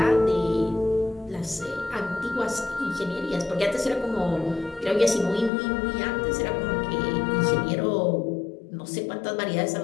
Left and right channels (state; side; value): drops out; right; at 5.5 s